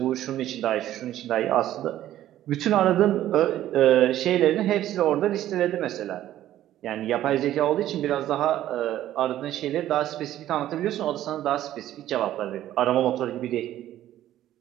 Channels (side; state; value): left; quieter; 13.0 dB